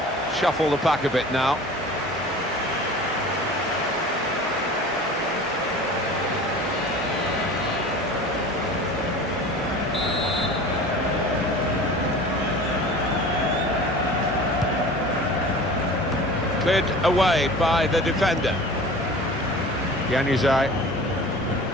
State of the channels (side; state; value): both; normal; correlation 0.40